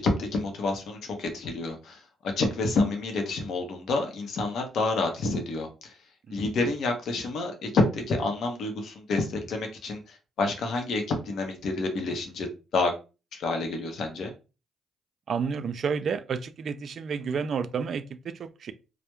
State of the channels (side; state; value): both; normal; correlation 0.71